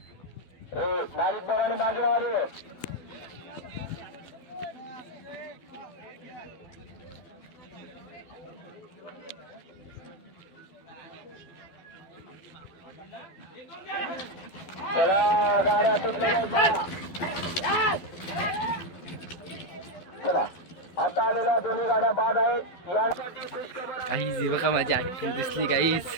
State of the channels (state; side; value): late; right; 12 ms